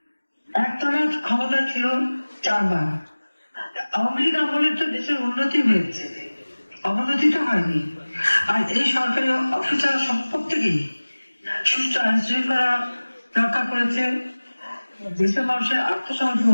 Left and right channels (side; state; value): both; inverted; correlation -1.00